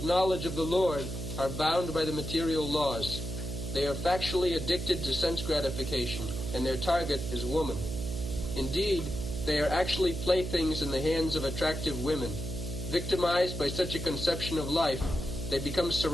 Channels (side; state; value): right; noise; hum, 5 dB below the sound